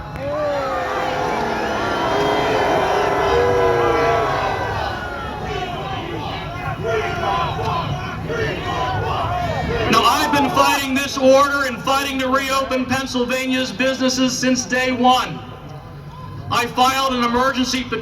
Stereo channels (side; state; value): both; identical; correlation 1.00